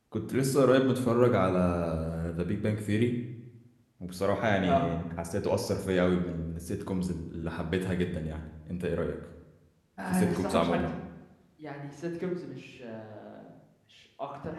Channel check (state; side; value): identical; both; correlation 1.00